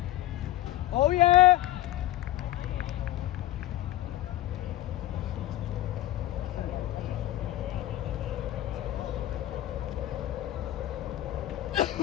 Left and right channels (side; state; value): right; quieter; 14.9 dB